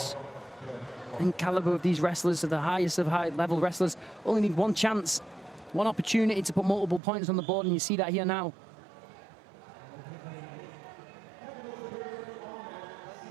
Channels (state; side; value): drops out; left; at 7.0 s